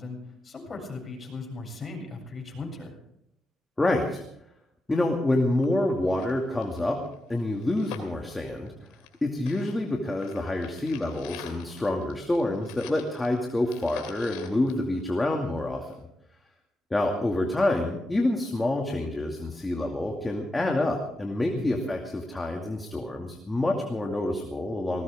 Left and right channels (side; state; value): both; normal; correlation 0.88